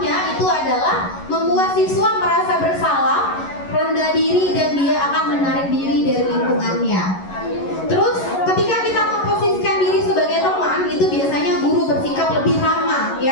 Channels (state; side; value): late; right; 11 ms